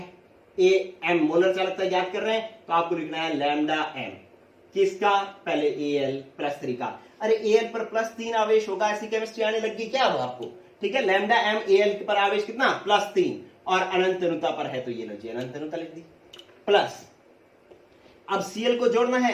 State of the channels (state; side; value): identical; both; correlation 1.00